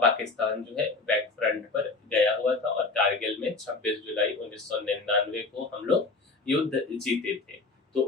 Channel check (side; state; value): right; quieter; 3.8 dB